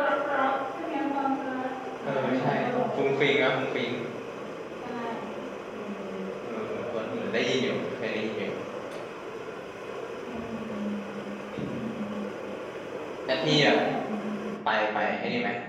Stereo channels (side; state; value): both; identical; correlation 1.00